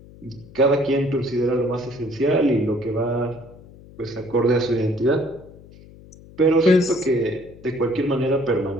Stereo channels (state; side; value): noise; left; hum, 21 dB below the sound